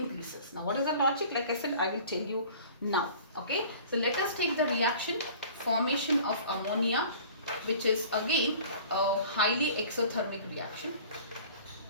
Now what is the logic? Like I said, I will tell you now. Okay, so let us take the reaction formation of ammonia, which is again a highly exothermic reaction.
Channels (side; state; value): both; inverted; correlation -0.46